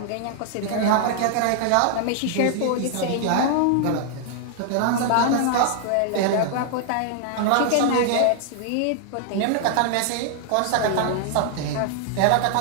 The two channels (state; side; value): different; both; correlation 0.00